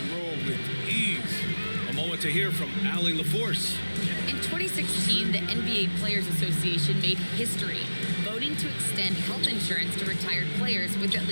roll with ease. A moment to hear from Allie LaForce. In 2016, the NBA Players Association made history, voting to extend health insurance to retired players with at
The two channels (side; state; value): both; inverted; correlation -1.00